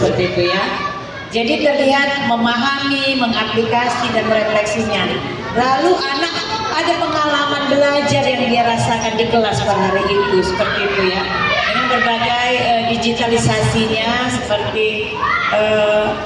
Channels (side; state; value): both; identical; correlation 1.00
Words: itu ya. Jadi terlihat memahami, mengaplikasi dan merefleksinya. Lalu anak ada pengalaman belajar yang dia rasakan di kelas pada hari itu, seperti itu ya. Dengan berbagai digitalisasinya seperti